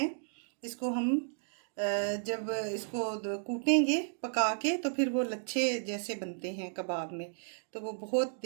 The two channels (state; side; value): silent; left; digital silence